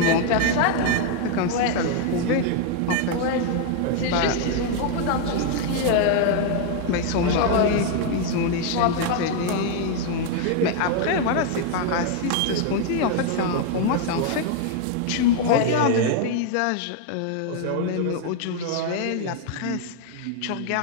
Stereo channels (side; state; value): both; different; correlation 0.00